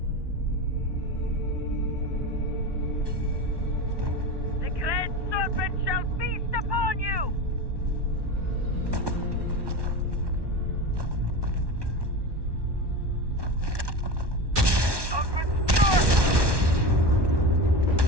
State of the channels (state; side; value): late; left; 1.2 ms